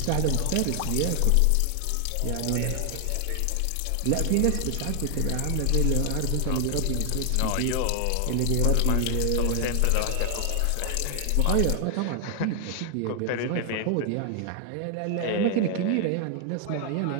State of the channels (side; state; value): both; different; correlation 0.00